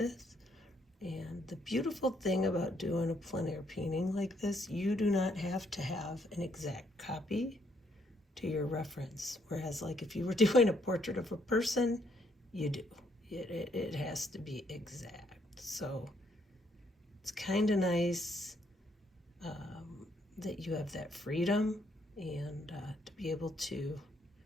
And the beautiful thing about doing a plein air painting like this, you do not have to have an exact copy to your reference. Whereas like if you were doing a portrait of a person, you do. It has to be exact. So it's kind of nice that you have that freedom and to be able to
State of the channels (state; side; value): normal; both; correlation 0.71